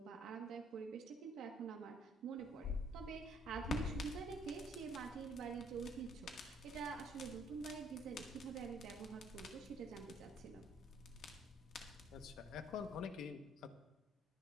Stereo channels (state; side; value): normal; both; correlation 0.63